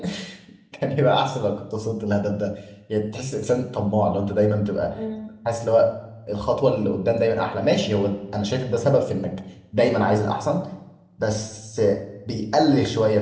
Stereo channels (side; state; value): both; identical; correlation 1.00